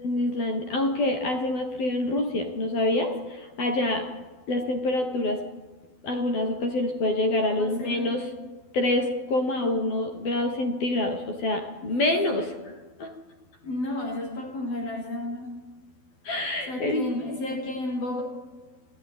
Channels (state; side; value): late; right; 12 ms